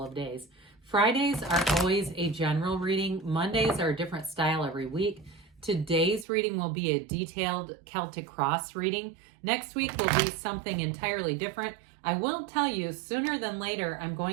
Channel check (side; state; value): left; drops out; at 6.2 s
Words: of days. Fridays are always a general reading. Mondays are a different style every week. Today's reading will be a detailed Celtic cross reading. Next week will be something entirely different. I will tell you sooner than later, I'm